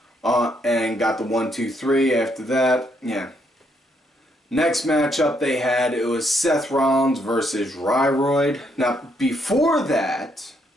and got the 1-2-3 after that. Yeah. Next matchup they had, it was Seth Rollins versus Ryroyd. Now, before that,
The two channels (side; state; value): both; normal; correlation 0.74